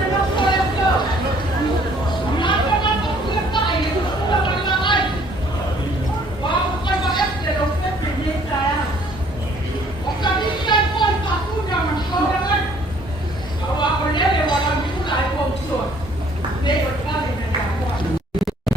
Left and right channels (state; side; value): normal; both; correlation 0.60